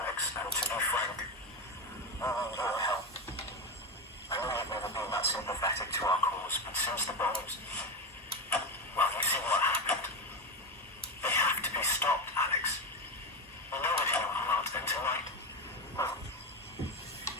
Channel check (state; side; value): normal; both; correlation 0.16